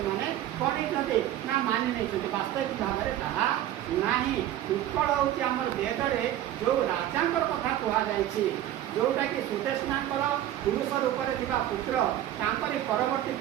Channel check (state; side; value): quieter; left; 12.6 dB